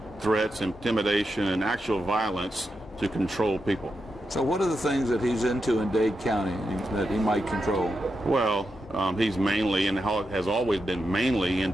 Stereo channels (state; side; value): normal; both; correlation 0.87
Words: threats, intimidation, and actual violence to control people. So what are the things that he's into in Dade County that he might control? Well, he's mainly, and has always been mainly,